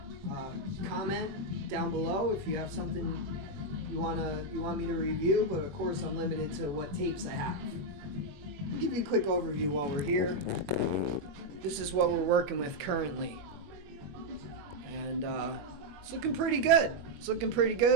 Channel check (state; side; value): late; left; 21 ms